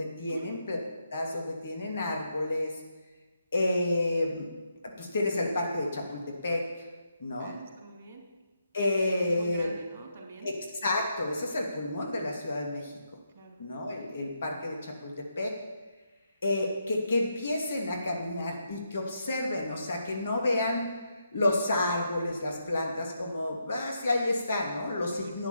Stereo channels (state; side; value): inverted; both; correlation -0.81